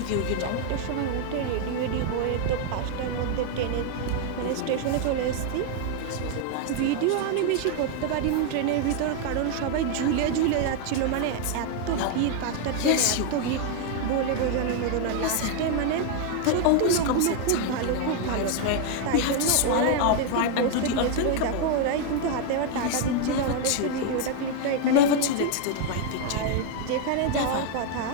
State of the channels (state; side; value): different; both; correlation 0.00